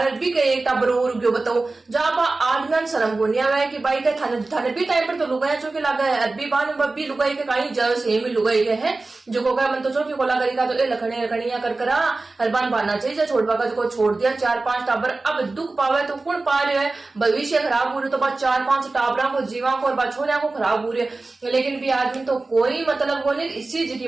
भी के एक टब्बर और गयो बताओ जब आदमी शर्म को नहीं आवे कि भाई के थाने थाने भी टाइम पर तो लुगाई जो के लगा है अभी बान बब्बी लुगाई के काई जाओ सेम ही लुगाई के है जो को मन तो चौकी को लगा का तो ए लखने लखनिया कर करा हरबान बाना चाहिए छोड़वा का को छोड़ दिया 4-5 टाबर अब दुख पावे तो कौन पा रहे है भविष्य खराब हो रही तो बाद 4-5 टाबरा को जीवा को और बछोरिया को खराब हो रही है लेकिन भी आदमी तो कोई मतलब को नहीं इसी जी की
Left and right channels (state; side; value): quieter; left; 3.4 dB